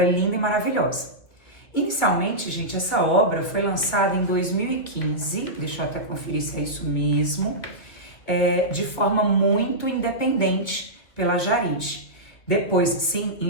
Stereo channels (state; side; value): late; right; 2.4 ms